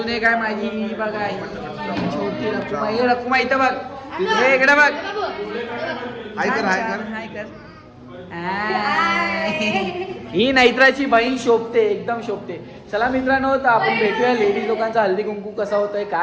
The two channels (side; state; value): both; identical; correlation 1.00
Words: एक आहे माझी बघा, छोटी रकुमा. हे रकुमा इथं बघ, हे इकडे बघ. हाय कर हाय कर हाय कर. ही नैत्राची बहीण शोभते, एकदम शोभते. चला मित्रांनो, तर आपण भेटूया लेडीज लोकांचा हळदी कुंकू कसा होतंय,